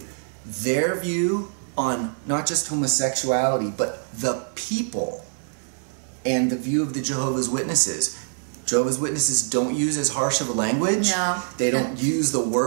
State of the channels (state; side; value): silent; left; digital silence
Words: Their view on not just homosexuality, but the people, and the view of the Jehovah's Witnesses. Jehovah's Witnesses don't use as harsh of a language. No. They don't use the